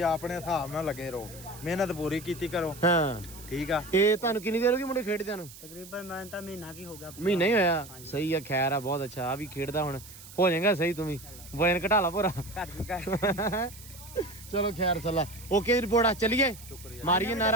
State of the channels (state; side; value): noise; right; hiss, 17 dB below the sound